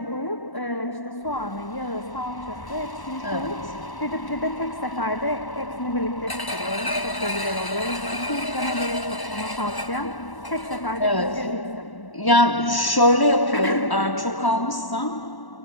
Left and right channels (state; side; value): late; right; 1.1 ms